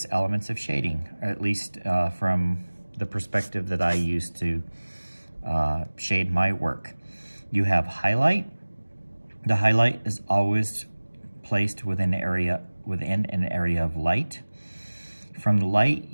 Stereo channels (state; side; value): inverted; both; correlation -1.00